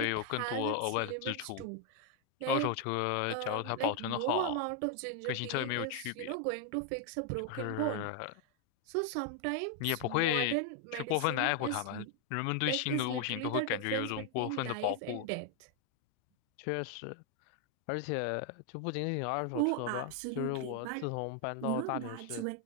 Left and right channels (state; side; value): different; both; correlation 0.00